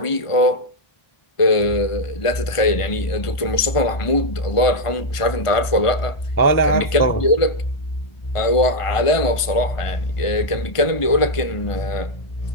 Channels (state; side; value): late; right; 1.5 ms